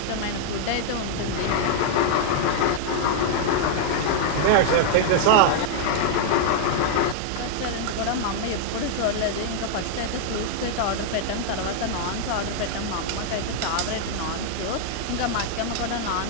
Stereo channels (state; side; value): different; both; correlation -0.01